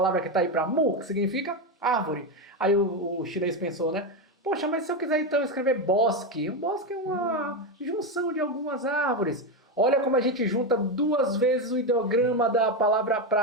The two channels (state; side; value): normal; both; correlation 0.11